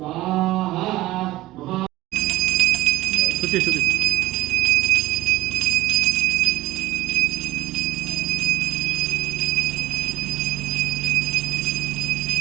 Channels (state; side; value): quieter; left; 17.0 dB